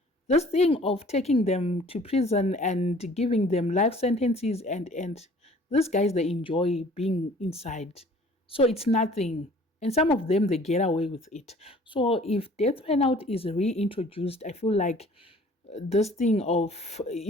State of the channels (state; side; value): normal; both; correlation 0.52